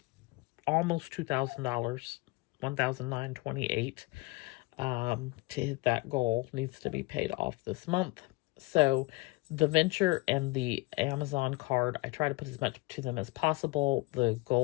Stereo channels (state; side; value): quieter; right; 23.6 dB